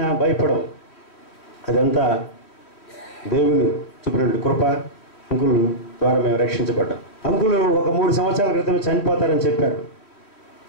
భయపడవు. అదంతా దేవుని చూపినటువంటి కృప. అంకుల్ ద్వారా మేము రక్షించబడ్డాం. అంకులు ఒక 3 సంవత్సరాల క్రితం చనిపోతారని చెప్పారు,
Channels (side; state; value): right; late; 3.1 ms